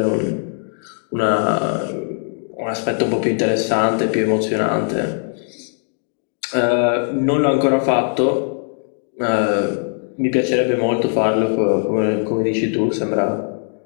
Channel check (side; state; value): right; silent; 66 dB below the other